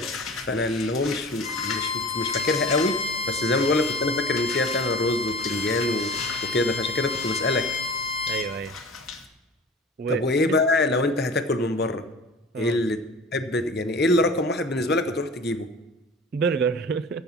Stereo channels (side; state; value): both; normal; correlation 0.39